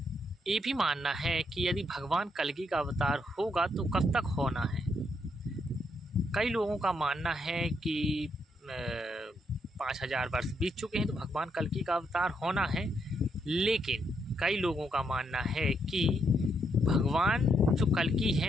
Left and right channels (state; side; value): normal; both; correlation 0.77